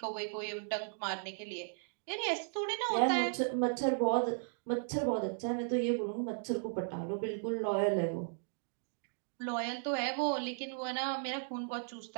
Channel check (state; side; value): silent; left; digital silence